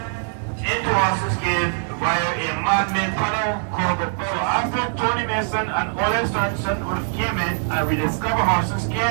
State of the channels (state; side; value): silent; left; 64 dB below the other